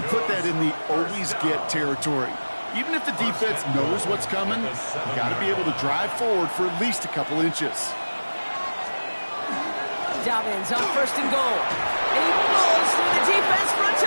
put that in the always-get territory. Even if the defense knows what's coming, you got to be able to drive forward for at least a couple inches. Dobbins on first and goal. And he blows through the defense for a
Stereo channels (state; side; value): inverted; both; correlation -1.00